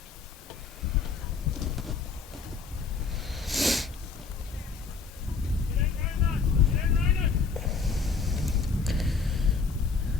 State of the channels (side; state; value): right; quieter; 5.0 dB